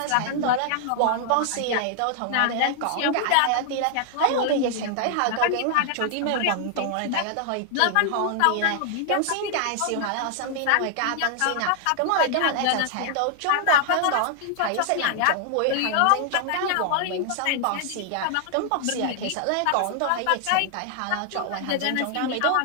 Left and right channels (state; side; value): different; both; correlation 0.00